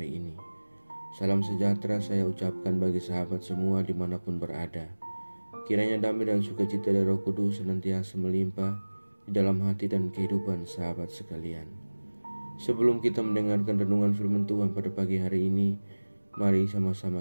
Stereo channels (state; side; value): inverted; both; correlation -1.00